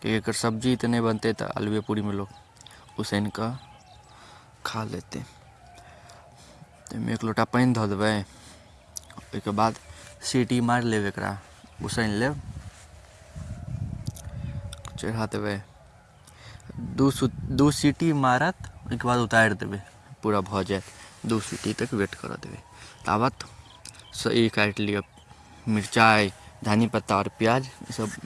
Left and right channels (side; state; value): both; identical; correlation 1.00